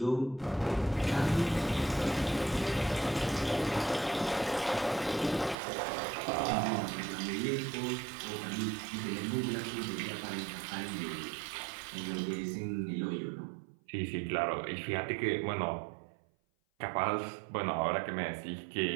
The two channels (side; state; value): left; drops out; at 5.6 s